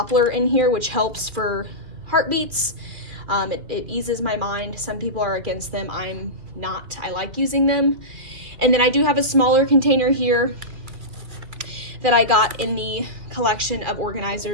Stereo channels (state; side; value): late; left; 2.4 ms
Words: in here, which helps for heartbeats. It eases my mind. Some people are against them. I'm not. I like using them. And then I do have a smaller container here that I got in the collection of